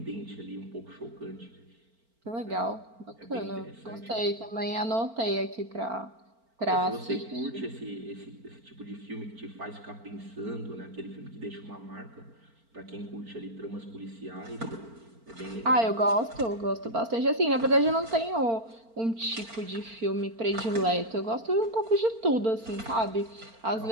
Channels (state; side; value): late; left; 4.4 ms